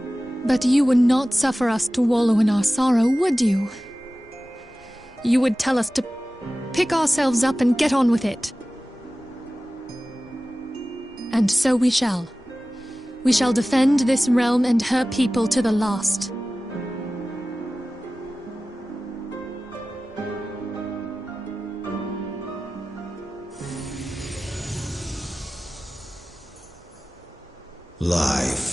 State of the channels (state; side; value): normal; both; correlation 0.96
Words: But you would not suffer us to wallow in our sorrow, would you? You would tell us to pick ourselves up and get on with it. And so we shall. We shall defend this realm and her people to the last.